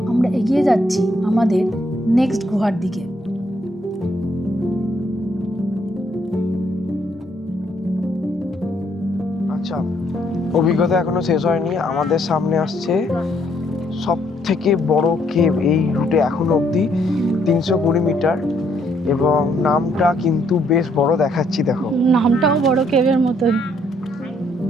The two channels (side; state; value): both; normal; correlation 0.70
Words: আমরা এগিয়ে যাচ্ছি আমাদের নেক্সট গুহার দিকে। আচ্ছা, অভিজ্ঞতা এখনো শেষ হয়নি। আমাদের সামনে আসছে সব থেকে বড় কেভ এই রুটে এখনো অবধি, 320 মিটার, এবং নামটা কিন্তু বেশ বড় দেখাচ্ছি। দেখো নামটাও বড় কেভের মতোই,